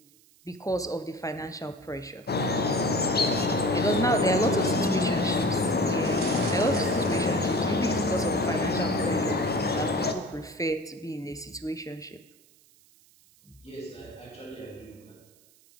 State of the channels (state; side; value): noise; right; hiss, 30 dB below the sound